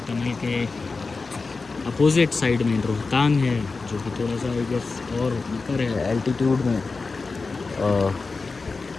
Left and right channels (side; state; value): right; quieter; 4.1 dB